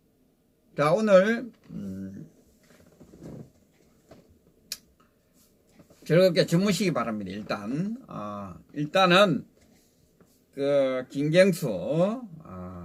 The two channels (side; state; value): both; identical; correlation 1.00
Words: 자, 오늘 즐겁게 주무시기 바랍니다. 일단은 그 김경수